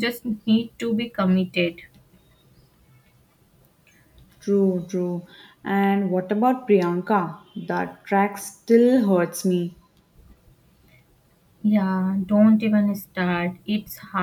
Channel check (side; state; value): both; identical; correlation 1.00